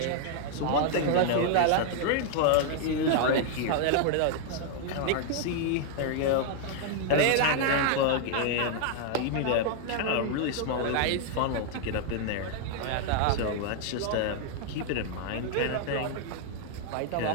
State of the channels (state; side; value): different; both; correlation -0.01